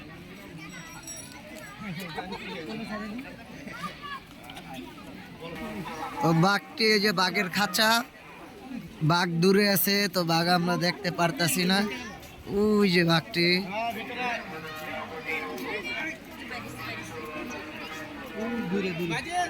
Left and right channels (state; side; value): identical; both; correlation 1.00